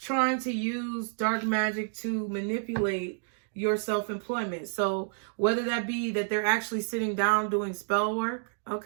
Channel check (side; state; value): left; silent; digital silence